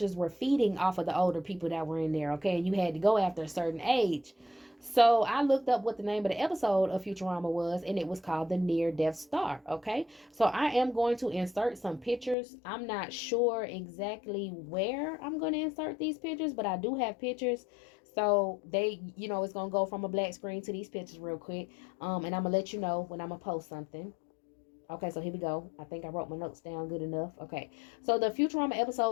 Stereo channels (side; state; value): right; drops out; at 12.4 s